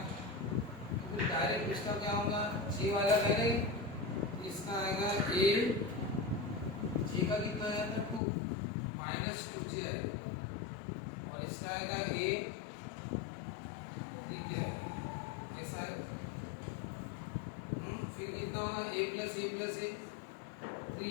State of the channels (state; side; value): drops out; right; at 8.2 s